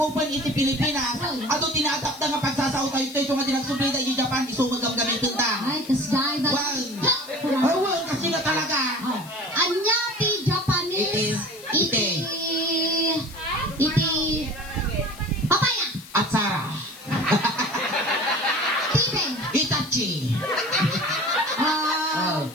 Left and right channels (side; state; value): left; noise; hiss, 18 dB below the sound